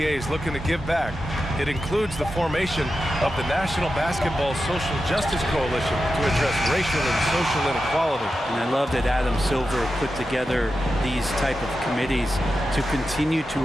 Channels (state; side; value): normal; both; correlation 0.90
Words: is looking to give back. It includes the formation of the National Basketball Social Justice Coalition to address racial and social inequality. And I love that Adam Silver put together these type of committees to continue to